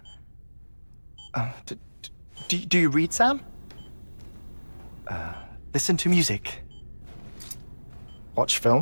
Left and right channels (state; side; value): inverted; both; correlation -1.00